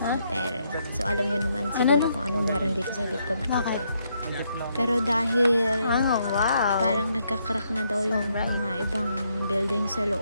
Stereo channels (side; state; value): both; inverted; correlation -0.75